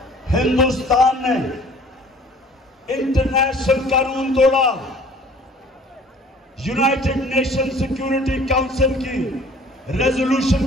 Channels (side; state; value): both; normal; correlation 0.51